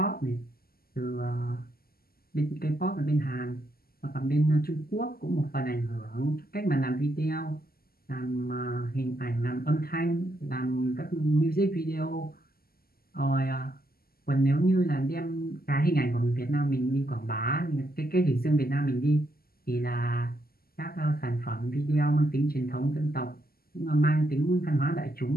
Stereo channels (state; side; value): late; right; 0.43 ms